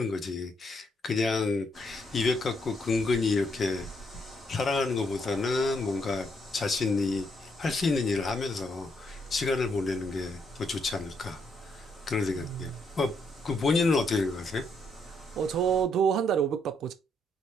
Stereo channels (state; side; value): normal; both; correlation 0.75